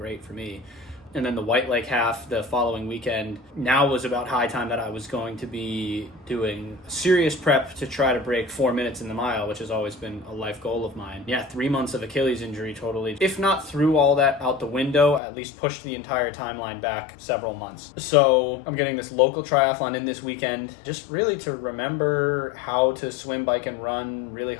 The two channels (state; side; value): drops out; right; at 15.2 s